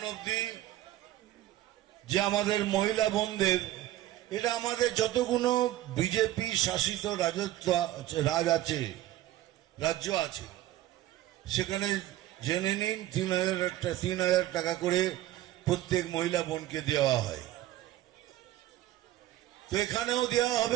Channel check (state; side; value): quieter; left; 14.5 dB